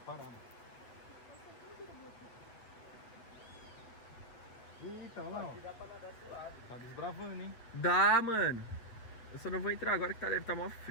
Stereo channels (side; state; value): right; late; 8.5 ms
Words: parada. Eita, olha lá, ó. Tá desbravando, hein? Dá, mano. Eu só não vou entrar agora que deve estar mó